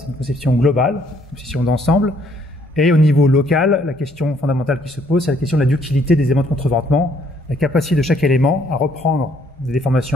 une conception globale, une conception d'ensemble. Et au niveau local, la question fondamentale qui se pose, c'est la question de la ductilité des éléments de contreventement, la capacité de chaque élément à reprendre des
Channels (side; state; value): both; normal; correlation 0.66